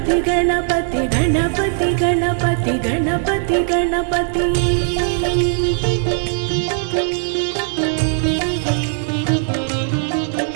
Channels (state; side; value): silent; left; digital silence